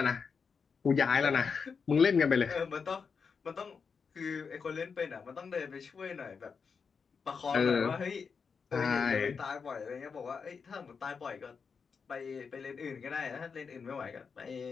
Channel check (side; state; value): right; quieter; 5.7 dB